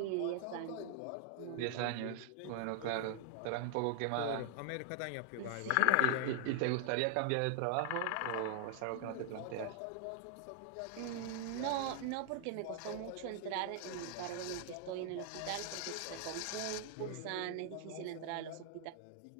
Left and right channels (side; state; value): both; different; correlation 0.00